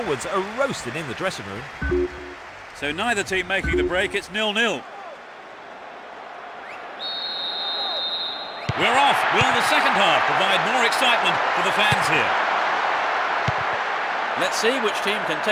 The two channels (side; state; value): both; identical; correlation 1.00